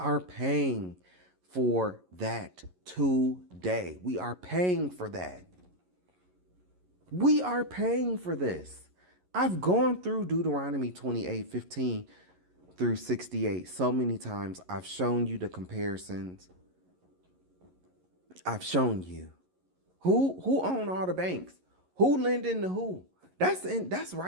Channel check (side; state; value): left; late; 11 ms